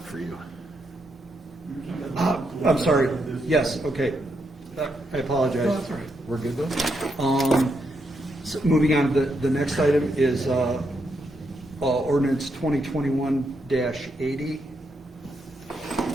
for you. I'm sorry. Yes, okay. I apologize. We're good though? So moving on, the next item is ordinance 2021-80.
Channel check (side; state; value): both; normal; correlation 0.80